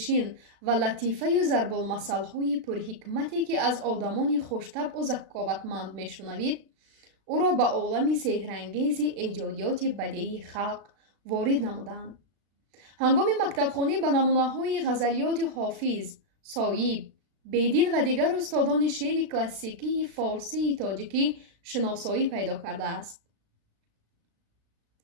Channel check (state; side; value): late; left; 36 ms